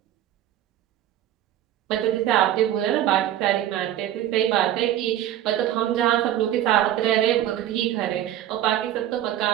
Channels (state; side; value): quieter; left; 12.2 dB